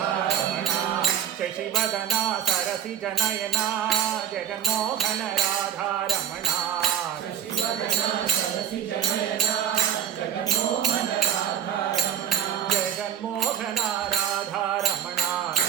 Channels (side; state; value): left; quieter; 9.5 dB